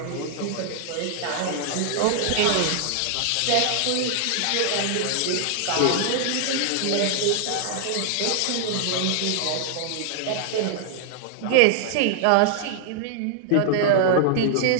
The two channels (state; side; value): different; both; correlation 0.00